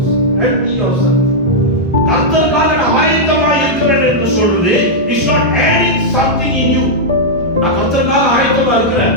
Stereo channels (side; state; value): both; normal; correlation -0.06